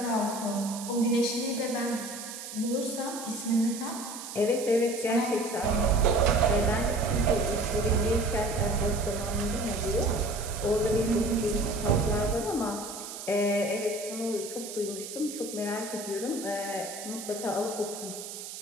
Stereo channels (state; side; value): noise; right; hiss, 10 dB below the sound